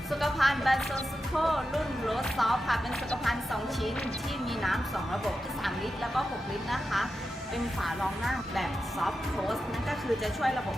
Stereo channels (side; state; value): both; normal; correlation 0.90